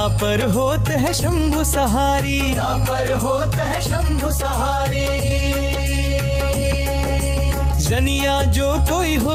होत है शंभु सहारी। तापर होत है शंभु सहारी। जनिया जो कोई हो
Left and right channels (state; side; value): identical; both; correlation 1.00